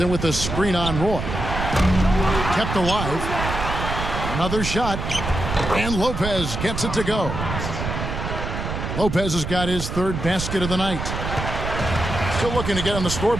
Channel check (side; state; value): right; noise; rumble, 4 dB below the sound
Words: with the screen on Roy. Kept alive. Another shot. And Lopez gets it to go. Lopez has got his 3rd basket of the night. Still looking to get on the